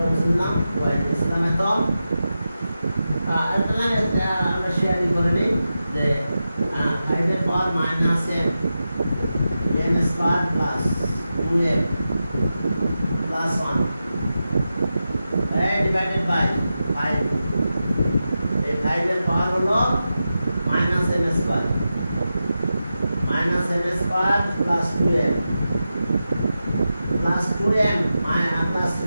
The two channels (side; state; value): both; inverted; correlation -0.91